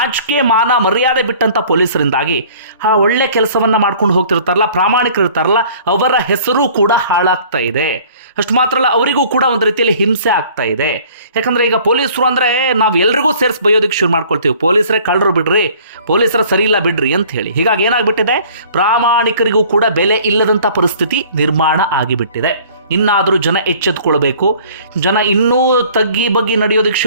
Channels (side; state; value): both; inverted; correlation -0.52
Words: ಮಾನ ಮರ್ಯಾದೆ ಬಿಟ್ಟಂಥ ಪೊಲೀಸರಿಂದಾಗಿ ಆ ಒಳ್ಳೆ ಕೆಲಸವನ್ನು ಮಾಡ್ಕೊಂಡು ಹೋಗ್ತಿರ್ತಾರಲ್ಲ, ಪ್ರಾಮಾಣಿಕರಿರ್ತಾರಲ್ಲ, ಅವರ ಹೆಸರು ಕೂಡ ಹಾಳಾಗ್ತಾ ಇದೆ. ಅಷ್ಟು ಮಾತ್ರ ಅಲ್ಲ, ಅವರಿಗೂ ಕೂಡ ಒಂದು ರೀತಿಯಲ್ಲಿ ಹಿಂಸೆ ಆಗ್ತಾ ಇದೆ. ಯಾಕಂದರೆ ಈಗ ಪೊಲೀಸರು ಅಂದರೆ ನಾವು ಎಲ್ರಿಗೂ ಸೇರಿಸಿ ಬೈಯೋದಕ್ಕೆ ಶುರು ಮಾಡ್ಕೊಳ್ತೀವಿ. ಪೊಲೀಸರೇ ಕಳ್ಳರು ಬಿಡ್ರಿ, ಪೊಲೀಸರ ಸರಿ ಇಲ್ಲ ಬಿಡ್ರಿ ಅಂತ ಹೇಳಿ. ಹೀಗಾಗಿ ಏನಾಗ್ಬಿಟ್ಟಿದೆ, ಪ್ರಾಮಾಣಿಕರಿಗೂ ಕೂಡ ಬೆಲೆ ಇಲ್ಲದಂಥ ಪರಿಸ್ಥಿತಿ ನಿರ್ಮಾಣ ಆಗಿಬಿಟ್ಟಿದೆ. ಇನ್ನಾದರೂ ಜನ ಎಚ್ಚೆತ್ಕೊಳ್ಬೇಕು. ಜನ ಇನ್ನೂ ತಗ್ಗಿ ಬಗ್ಗಿ ನಡೆಯೋದಕ್ಕೆ